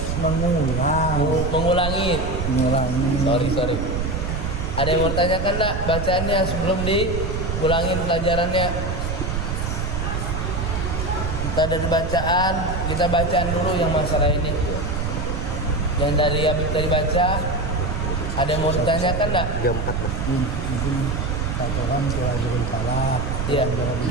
mengulang. mengulangi. Mengulangi. Sorry. Ada yang mau tanyakan enggak bacaannya sebelum diulangin pelajarannya? Kita dari bacaan, kita bacaan dulu yang masalah ini. Yang dari Habib tadi baca, ada yang mau ditanyakan enggak? 34 Bang. Mungkin Tuhan Tuhan Falaq, Iya.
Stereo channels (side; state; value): right; noise; rumble, 2 dB below the sound